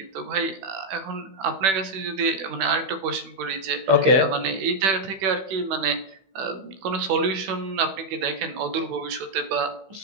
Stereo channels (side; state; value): left; late; 16 ms